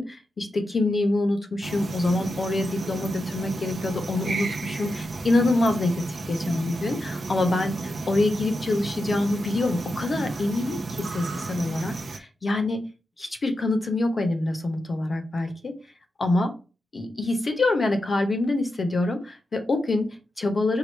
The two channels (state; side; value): normal; both; correlation 0.88